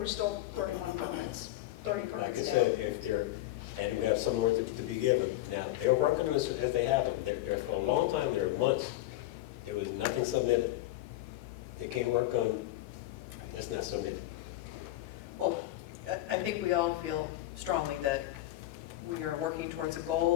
still 31 permits, 30 Like I permits down. said, if they're, and we have some more to be given. Now, they're working on this as they have them. They're for a long time, there were months, there was nothing submitted. They can't work on, that's not submitted. Well, I think we all feel strongly that we are working towards a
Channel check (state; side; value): quieter; right; 15.8 dB